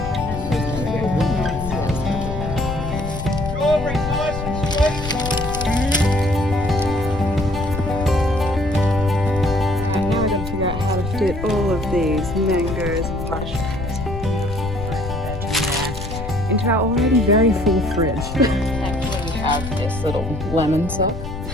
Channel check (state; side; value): noise; left; rumble, 7 dB below the sound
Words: Get all of these mangoes and mushrooms into our already very full fridge. Thankfully we have this little lemon sauce.